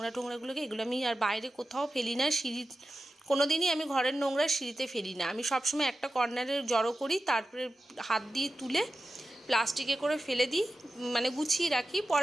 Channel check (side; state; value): both; normal; correlation 0.92